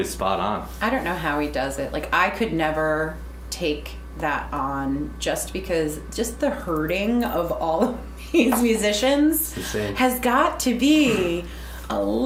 spot on. I don't know how he does it. Like, I could never take that on just because just the herding of all of these musicians Insane. has got to be a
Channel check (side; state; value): both; identical; correlation 1.00